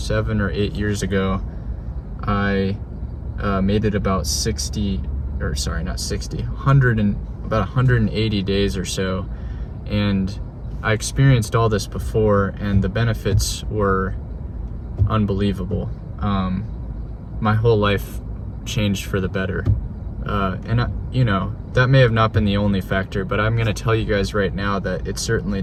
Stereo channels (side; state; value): both; identical; correlation 1.00